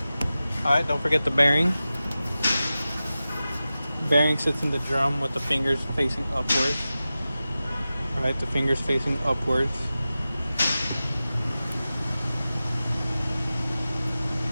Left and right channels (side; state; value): both; inverted; correlation -0.95